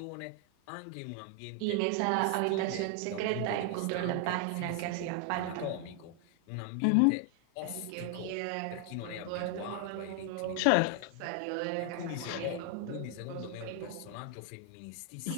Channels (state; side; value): different; both; correlation 0.00